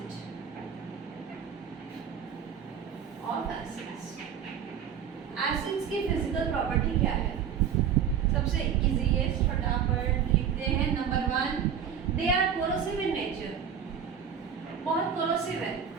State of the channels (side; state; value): left; quieter; 8.0 dB